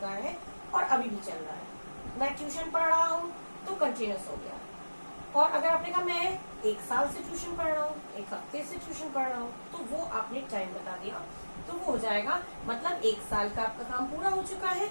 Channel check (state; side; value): inverted; both; correlation -1.00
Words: है और अभी भी चल रहा है. मैं ट्यूशन पढ़ रहा हूँ तो कंटिन्यूअस हो गया. और अगर आपने कहा मैं 1 साल से ट्यूशन पढ़ रहा हूँ, 1 हफ्ते से ट्यूशन पढ़ रहा हूँ, तो वो आपने टाइम बता दिया, तो वो हो जाएगा मतलब 1 साल का आपका काम पूरा हो चुका है